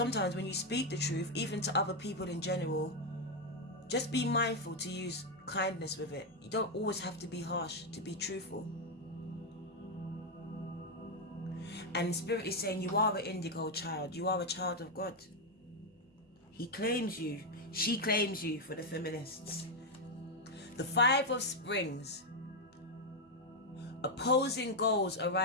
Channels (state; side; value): normal; both; correlation 0.03